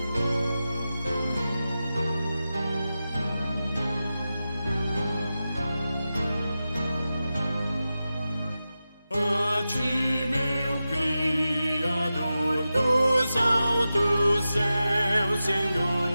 A ti, meu Criador dos altos céus,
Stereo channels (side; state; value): both; inverted; correlation -0.92